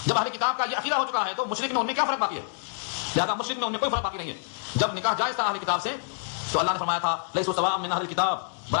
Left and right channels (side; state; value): right; silent; digital silence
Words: جب اہل کتاب کا یہ عقیدہ ہو چکا ہے تو مشرک میں ان میں کیا فرق باقی ہے؟ لہذا مشرک میں ان میں کوئی فرق باقی نہیں ہے۔ جب نکاح جائز تھا اہل کتاب سے تو اللہ نے فرمایا تھا لیسوا سواء من اہل کتاب،